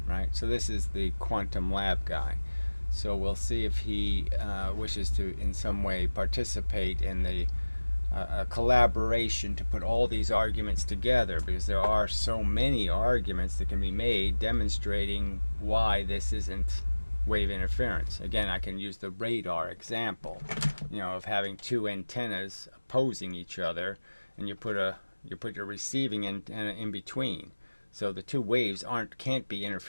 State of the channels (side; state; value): both; inverted; correlation -1.00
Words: right? So this is the quantum lab guy. So we'll see if he wishes to in some way participate in the a collaboration to put all these arguments together, because there are so many arguments that can be made demonstrating why this isn't wave interference. Again, I can use the radar example, of having two antennas opposing each other, and you put your receiving antenna in between, so the two waves can't be